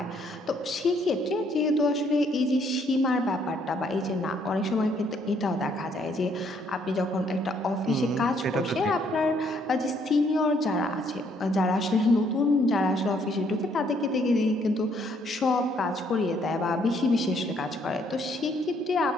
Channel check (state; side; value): normal; both; correlation 0.68